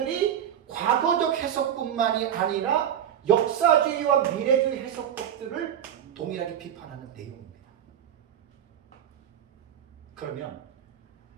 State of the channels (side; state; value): left; quieter; 9.8 dB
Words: 과거적 해석뿐만이 아니라 역사주의와 미래주의 해석법들을 동일하게 비판하는 내용입니다. 그러면